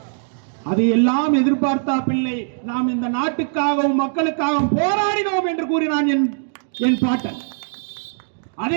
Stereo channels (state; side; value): silent; left; digital silence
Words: அது எல்லாம் எதிர்பார்த்தா பிள்ளை, நாம் இந்த நாட்டுக்காகவும் மக்களுக்காகவும் போராடினோம் என்று கூறினான் என் பாட்டன்.